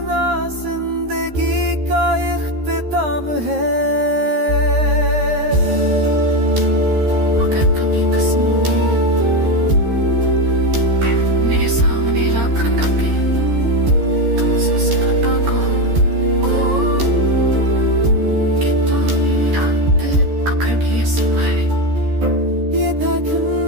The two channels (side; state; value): left; late; 13 ms